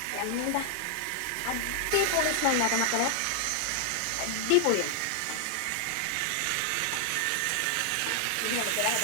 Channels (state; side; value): different; both; correlation 0.00